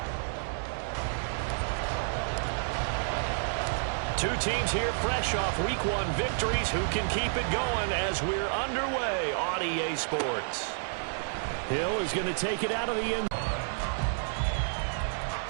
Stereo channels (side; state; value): left; silent; digital silence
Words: Two teams here fresh off Week 1 victories. Who can keep it going as we're underway on EA Sports? Hill is going to take it out of the end.